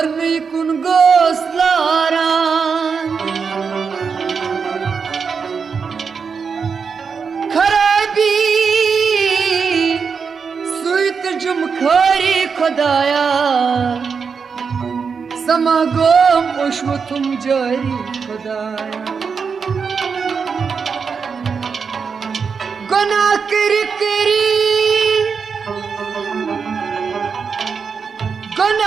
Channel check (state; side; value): quieter; left; 5.7 dB